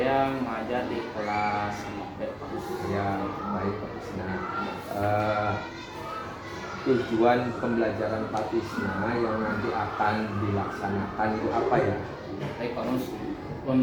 mengajar di kelas 5B Pak Mus. Ya, baik Pak Tisna. Tujuan pembelajaran Pak Tisna yang nanti akan dilaksanakan itu apa ya? Baik Pak Mus.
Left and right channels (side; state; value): both; identical; correlation 1.00